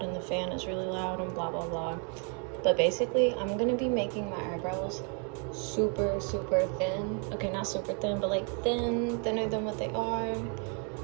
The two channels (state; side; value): quieter; left; 39.4 dB